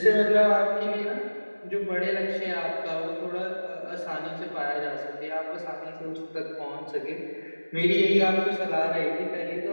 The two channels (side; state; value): both; inverted; correlation -1.00